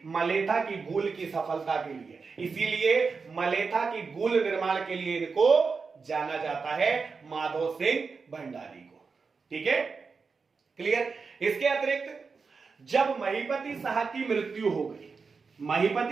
मलेथा की गूल की सफलता के लिए, इसीलिए मलेथा की गूल निर्माण के लिए इनको जाना जाता है माधव सिंह भंडारी को। ठीक है, क्लियर। इसके अतिरिक्त जब महीपति शाह की मृत्यु हो गई,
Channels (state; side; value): quieter; left; 4.9 dB